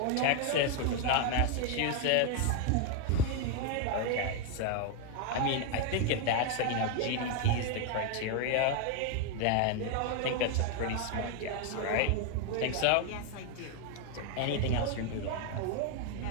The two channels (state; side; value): different; both; correlation 0.01